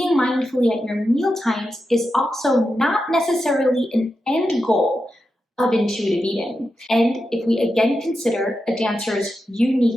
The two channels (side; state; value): both; normal; correlation 0.89